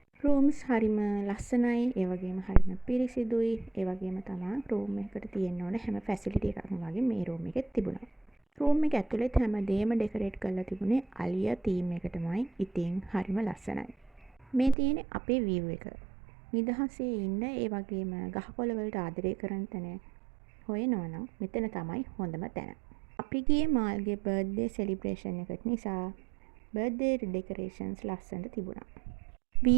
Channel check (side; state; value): left; drops out; at 14.8 s